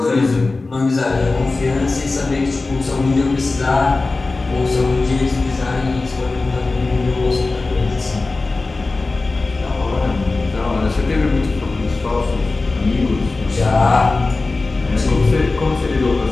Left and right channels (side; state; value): right; quieter; 3.5 dB